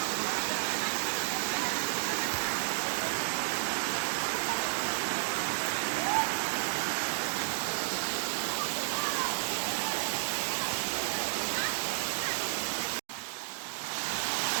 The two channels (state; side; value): silent; left; digital silence